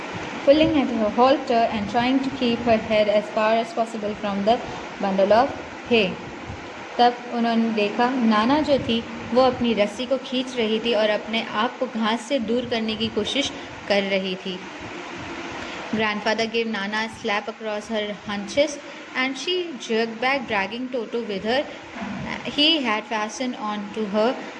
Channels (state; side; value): identical; both; correlation 1.00